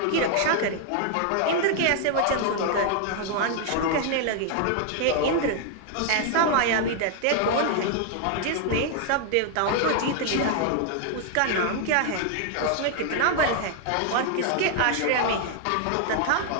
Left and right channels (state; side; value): different; both; correlation 0.00